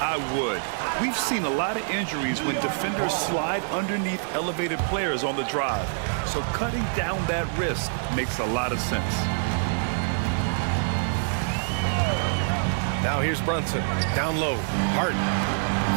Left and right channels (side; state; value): left; silent; digital silence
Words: would. We've seen a lot of injuries when defenders slide underneath elevated players on the drive. So cutting down that risk makes a lot of sense. Now here's Brunson. Down low. Hart